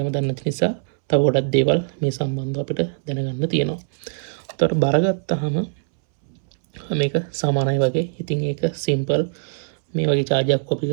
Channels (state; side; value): silent; left; 64 dB below the other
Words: දන්න නිසා තව ගොඩක් දේවල් මේ සම්බන්ධව අපිට දැනගන්න තියෙනවා. උතර බර ගත්තාම මේක සමානයි වගේ. ඉතින් ඒක සිම්පල්. මේ වගේ charger කොපි